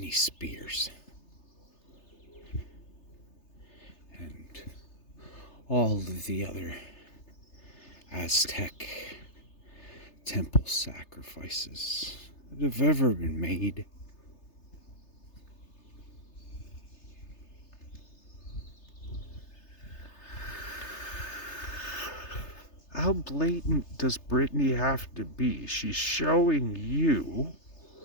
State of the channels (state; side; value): late; right; 3.3 ms